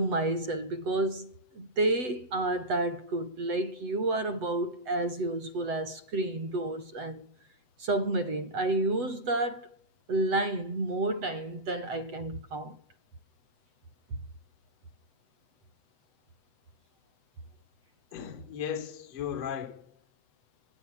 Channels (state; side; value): late; left; 8.0 ms